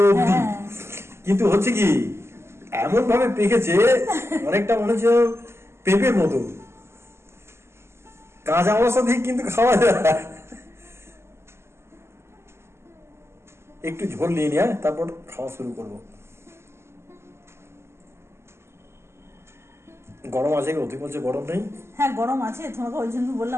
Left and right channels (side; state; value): left; late; 0.12 ms